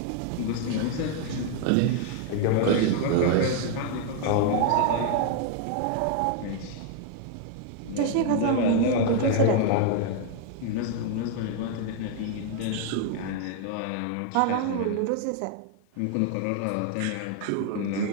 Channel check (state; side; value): different; both; correlation 0.00